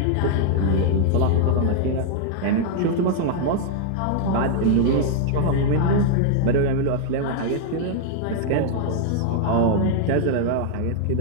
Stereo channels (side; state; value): both; different; correlation 0.00